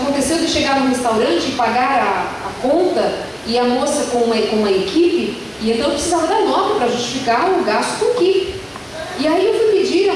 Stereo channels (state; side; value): identical; both; correlation 1.00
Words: de chegar no restaurante e pagar a conta e a moça com uma equipe, e então eu precisava da nota para justificar o gasto com equipe. E aí eu fui pedir a